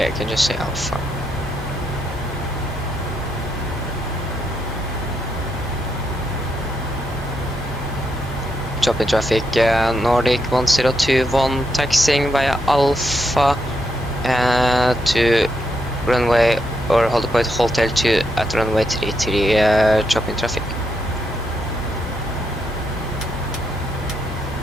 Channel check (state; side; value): normal; both; correlation 0.80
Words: I can just say Alpha. Drop in traffic, Nordic 1021 taxiing via Alpha to runway or hold point hotel 2 at runway 33, drop in traffic.